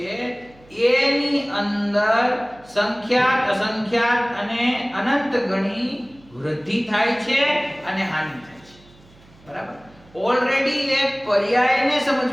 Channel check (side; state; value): right; noise; hum, 27 dB below the sound